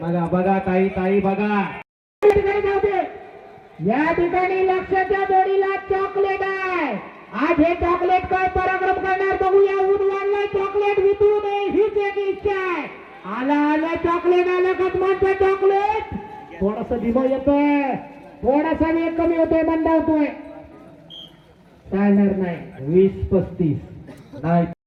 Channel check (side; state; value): both; identical; correlation 1.00